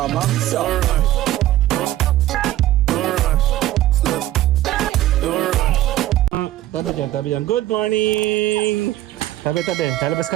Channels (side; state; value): left; quieter; 14.3 dB